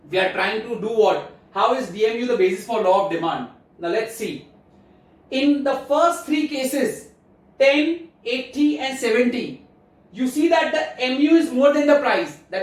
We are trying to do what? How is DMU the basis for law of demand? Now let's see. In the first 3 cases, 10, 80 and 70, you see that the MU is more than the price.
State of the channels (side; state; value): both; identical; correlation 1.00